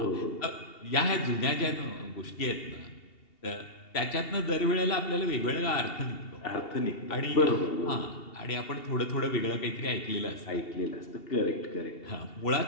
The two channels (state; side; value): late; right; 2.7 ms